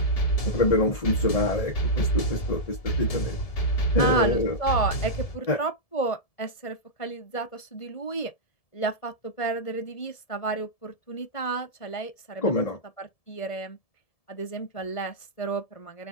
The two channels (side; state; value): right; late; 1.7 ms